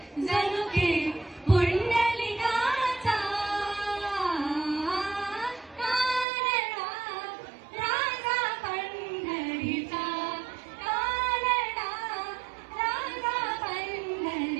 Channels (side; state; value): left; drops out; at 6.2 s